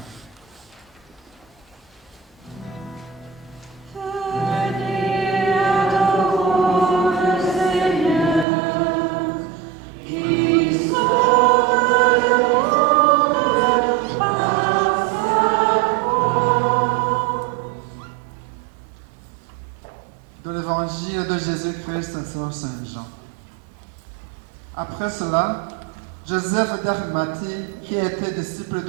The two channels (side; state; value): left; drops out; at 8.5 s